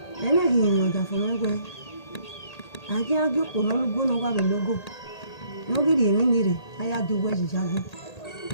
ena gi no da fun egwe aje ajo ko no lugo no wa be logo no gi ri mi ni re aya du we ji jago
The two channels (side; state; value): right; late; 1.8 ms